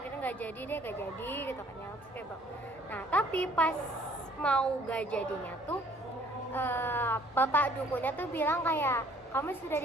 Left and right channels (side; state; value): both; normal; correlation 0.58